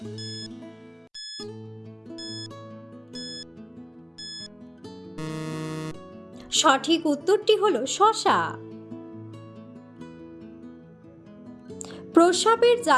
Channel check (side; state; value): both; identical; correlation 1.00